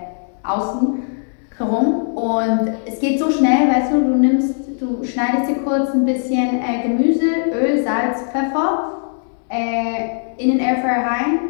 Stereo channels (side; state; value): right; silent; digital silence